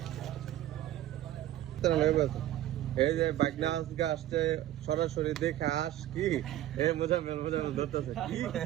এই যে বাগনা আজকে আসছে সরাসরি দেখে আস কি মজা ধরতেছে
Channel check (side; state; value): left; quieter; 13.3 dB